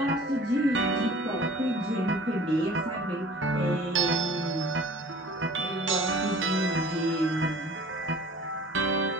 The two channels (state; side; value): normal; both; correlation 0.46